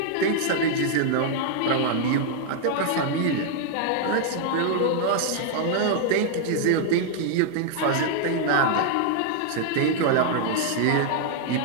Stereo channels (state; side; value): different; both; correlation 0.00